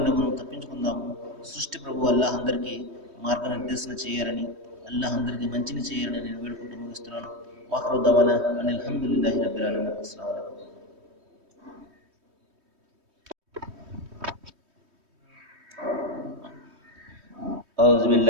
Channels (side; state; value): left; late; 3.2 ms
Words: మనం తప్పించుకుందాము. సృష్టి ప్రభు అల్లాహ్ అందరికీ మార్గనిర్దేశన చేయాలని, అల్లాహ్ అందరికీ మంచిని చేయాలని నేను వేడుకుంటూ ముగిస్తున్నాను. వాఖరు దవానా అనిల్ హమ్దులిల్లాహి రబ్బిల్ ఆలమీన్. అస్సలాము అలైకుం. أعوذ